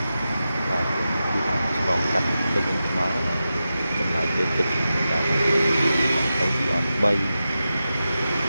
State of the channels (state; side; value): inverted; both; correlation -0.92